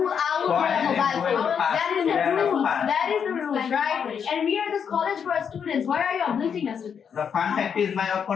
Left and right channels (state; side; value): quieter; right; 7.3 dB